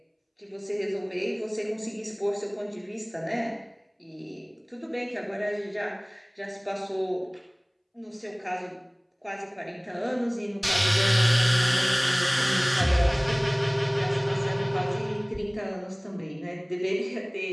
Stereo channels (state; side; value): identical; both; correlation 1.00